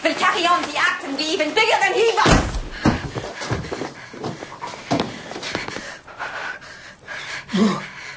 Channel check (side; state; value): both; identical; correlation 1.00